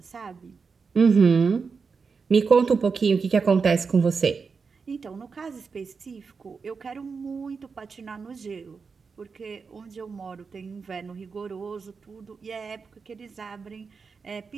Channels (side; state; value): left; quieter; 5.2 dB